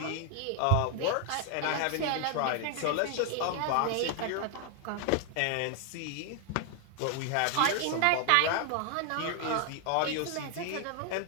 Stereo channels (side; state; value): both; different; correlation 0.00